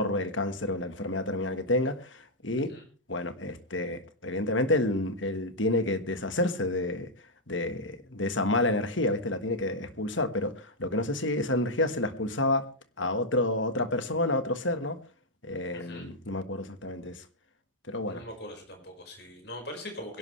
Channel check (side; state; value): both; normal; correlation -0.03